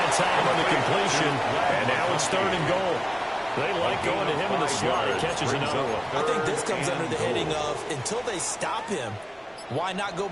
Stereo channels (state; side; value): identical; both; correlation 1.00